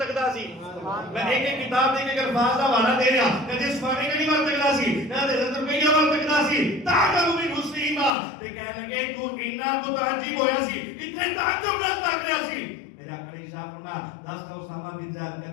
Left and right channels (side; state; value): right; drops out; at 8.1 s